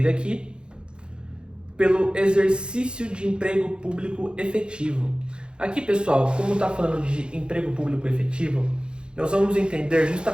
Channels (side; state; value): left; late; 0.052 ms